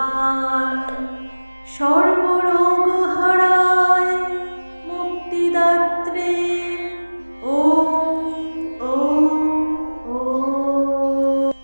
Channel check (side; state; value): both; inverted; correlation -1.00